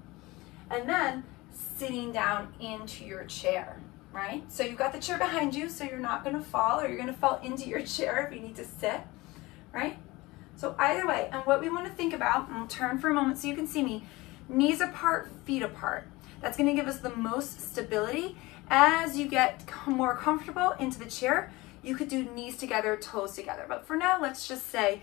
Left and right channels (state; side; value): quieter; right; 21.4 dB